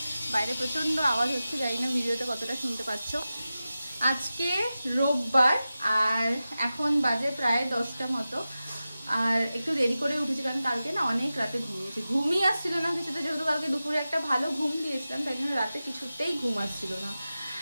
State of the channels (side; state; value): both; inverted; correlation -0.94